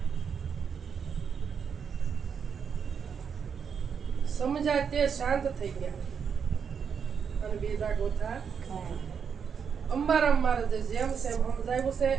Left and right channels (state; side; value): quieter; left; 6.8 dB